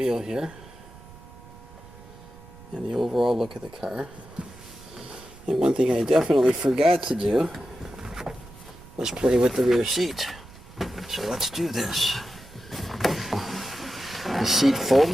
here. And the overall look of the car. And one thing I definitely forgot to do was play with the rear seat. So let's do this. The seat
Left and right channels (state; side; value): noise; right; rumble, 20 dB below the sound